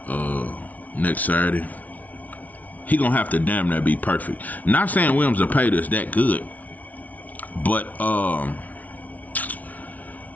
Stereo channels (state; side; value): late; right; 0.074 ms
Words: next Saturday. He gonna have to damn near be perfect. Not saying Williams will pay us that good, but